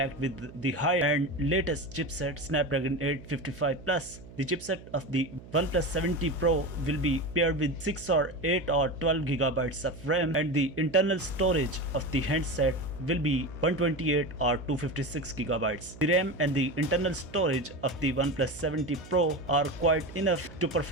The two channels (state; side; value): noise; right; hum, 18 dB below the sound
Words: with the high-end latest chipset Snapdragon 855 Plus. The chipset of the OnePlus 7T Pro will be paired with 6 or 8 or 12 gigabytes of RAM, and the internal storage of the handset will be 128 or 256 gigabytes. The RAM and the internal storage of the OnePlus 7T Pro are quite enough to